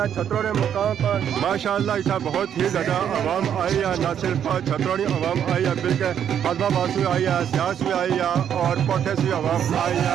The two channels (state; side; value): quieter; left; 9.1 dB